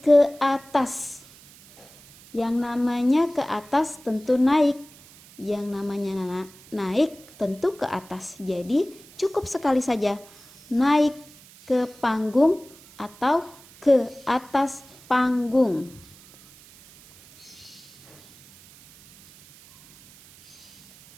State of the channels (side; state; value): right; noise; hiss, 23 dB below the sound